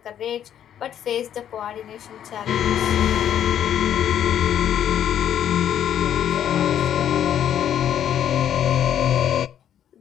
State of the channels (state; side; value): quieter; right; 10.0 dB